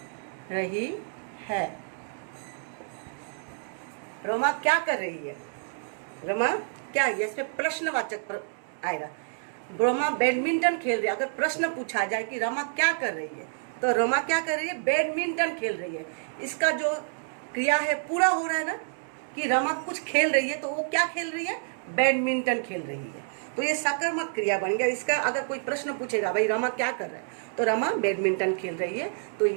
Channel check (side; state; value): left; silent; digital silence